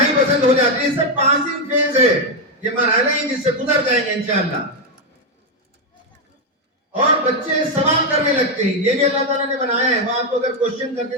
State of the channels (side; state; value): both; normal; correlation 0.03